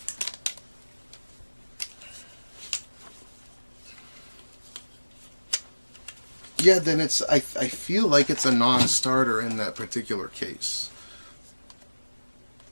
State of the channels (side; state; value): both; inverted; correlation -1.00